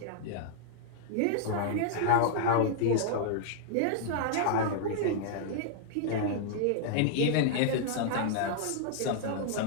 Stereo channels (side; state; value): both; different; correlation -0.01